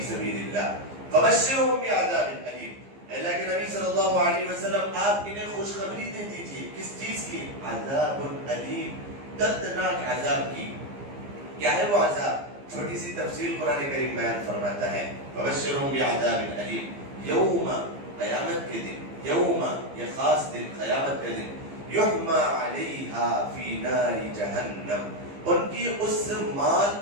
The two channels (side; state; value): left; late; 15 ms